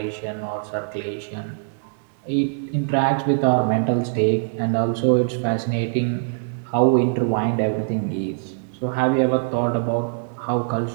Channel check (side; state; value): left; silent; digital silence